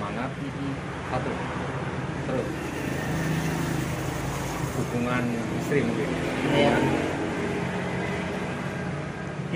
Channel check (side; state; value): both; identical; correlation 1.00